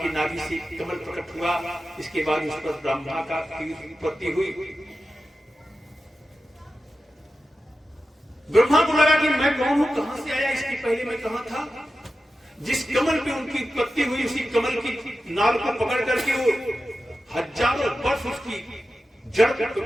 नाभि से कमल प्रकट हुआ, इसके बाद उस पर ब्रह्मा का उत्पत्ति हुई। ब्रह्मा को लगा कि मैं कौन हूं, कहां से आया, इसके पहले मैं कहां था। जिस कमल पे उनकी उत्पत्ति हुई उसी कमल की नाल को पकड़ करके वो हजारों वर्ष उसकी जड़ को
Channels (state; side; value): normal; both; correlation 0.92